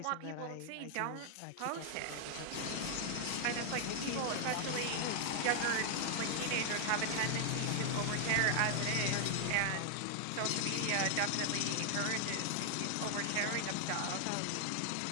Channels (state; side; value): different; both; correlation 0.00